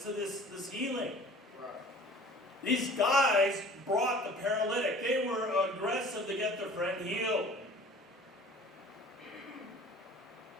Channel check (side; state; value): both; normal; correlation 0.47